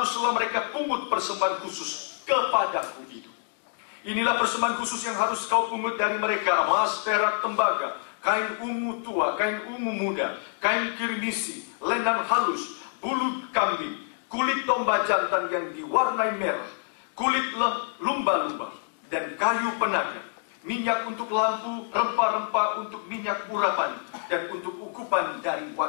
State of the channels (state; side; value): silent; right; digital silence